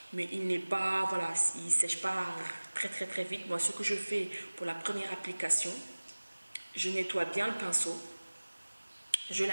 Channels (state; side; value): inverted; both; correlation -1.00